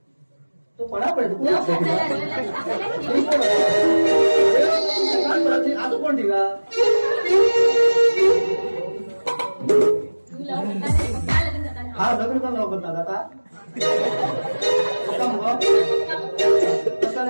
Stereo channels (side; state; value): both; inverted; correlation -1.00